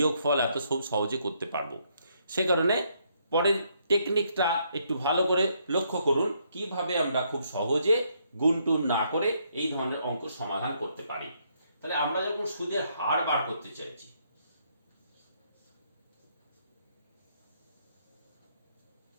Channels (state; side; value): inverted; both; correlation -0.73